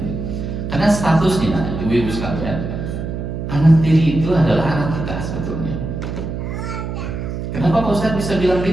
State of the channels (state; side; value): noise; right; hum, 5 dB below the sound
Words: Karena statusnya ibu-ibu sekalian, anak tiri itu adalah anak kita sebetulnya. Kenapa Pak Ustadz bisa bilang